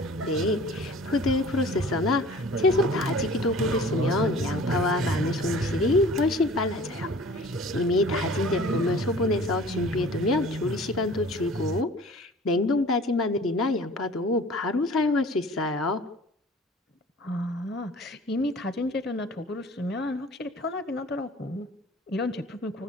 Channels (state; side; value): normal; both; correlation 0.46